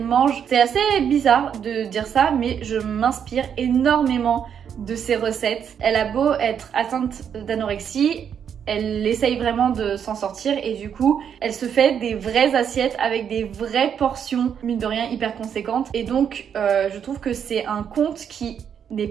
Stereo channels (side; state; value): left; quieter; 8.1 dB